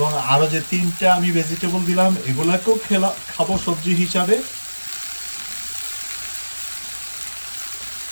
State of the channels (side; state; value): both; inverted; correlation -1.00